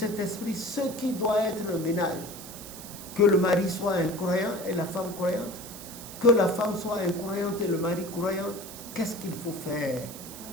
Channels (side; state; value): right; noise; hiss, 13 dB below the sound